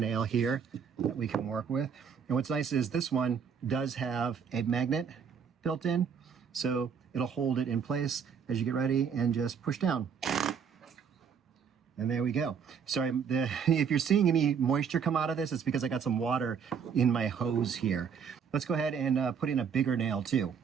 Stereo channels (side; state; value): left; quieter; 6.9 dB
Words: here that we can work with. And what's nice is this one does have a magnet built in, so it'll hold it in place as you get ready and just push down. And there we go. Sorry, if you're seeing any moisture come out of this, it's because I got some water in my hose here. Let's go ahead and put in a bigger nail too.